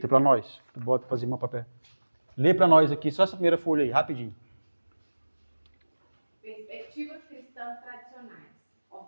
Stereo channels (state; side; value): inverted; both; correlation -1.00